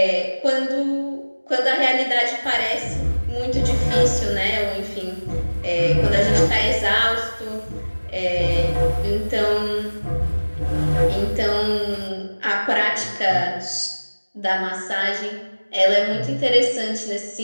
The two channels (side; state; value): both; inverted; correlation -1.00